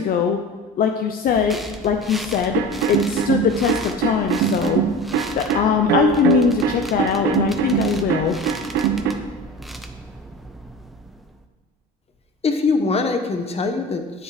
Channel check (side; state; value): both; normal; correlation 0.34